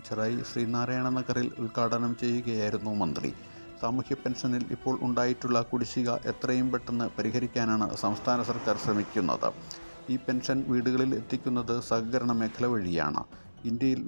ചെറായി ശ്രീനാരായണ നഗറിൽ ഉദ്ഘാടനം ചെയ്യുകയായിരുന്നു മന്ത്രി. സാമൂഹ്യ പെൻഷനിൽ ഇപ്പോൾ ഉണ്ടായിട്ടുള്ള കുടിശ്ശിക എത്രയും പെട്ടെന്ന് പരിഹരിക്കാനാണ് സംസ്ഥാന സർക്കാർ ശ്രമിക്കുന്നത്. ഈ പെൻഷൻ വീടുകളിൽ എത്തിക്കുന്നത് സഹകരണ മേഖല വഴിയാണ്. ഇന്ത്യയിൽ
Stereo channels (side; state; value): both; inverted; correlation -1.00